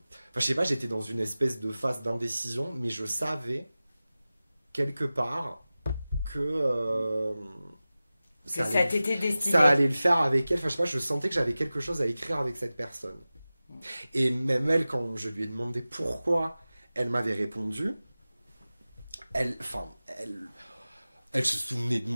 sais pas, j'étais dans une espèce de phase d'indécision, mais je savais quelque part que ça t'était destiné. Ça allait le faire avec elle. Enfin, je sais pas, je sentais que j'avais quelque chose à écrire avec cette personne. Et même elle, quand je lui ai demandé pourquoi elle m'avait répondu, elle se souvenait de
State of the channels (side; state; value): both; inverted; correlation -0.96